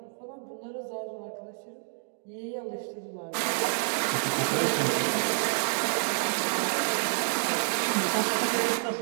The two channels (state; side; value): silent; left; digital silence